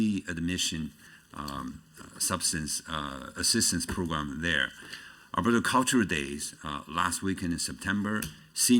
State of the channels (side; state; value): both; identical; correlation 1.00